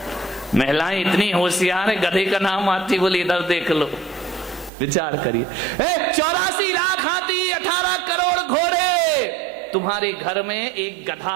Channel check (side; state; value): left; drops out; at 4.7 s